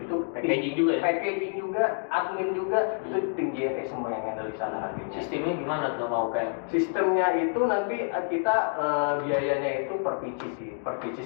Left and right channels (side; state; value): right; silent; 59 dB below the other